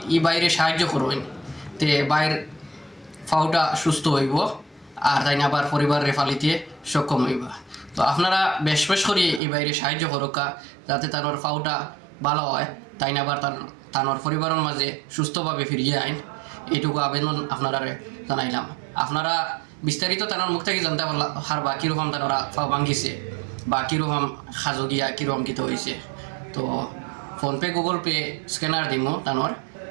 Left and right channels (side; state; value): left; drops out; at 9.4 s